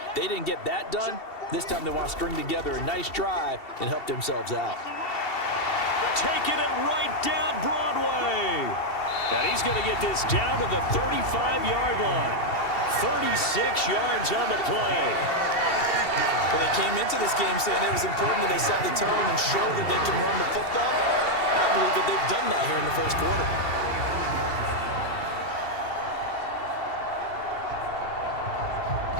They didn't get that done. This time they want to string together a nice drive and help themselves out. Taking it right down Broadway. And he's going to get this down to the 35-yard line. 36 yards on the play. Well, they came into this game saying it was important that they set the tone and show that they can run the football. I believe that they've done that here in the first quarter.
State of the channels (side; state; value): right; late; 2.7 ms